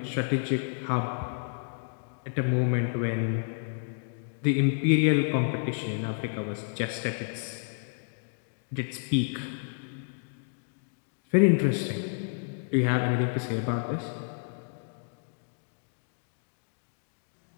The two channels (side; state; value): right; silent; digital silence